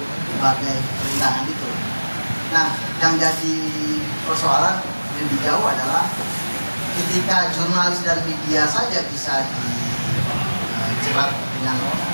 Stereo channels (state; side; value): inverted; both; correlation -1.00